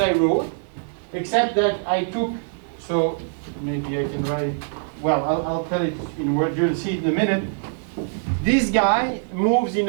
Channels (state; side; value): silent; left; 63 dB below the other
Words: I wrote, except that I took. So maybe I can write it. Well, I'll tell it in words. You'll see it in a minute. This guy moves in